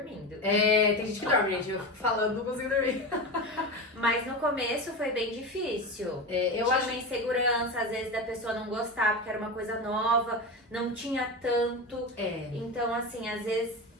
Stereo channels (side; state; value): both; normal; correlation 0.22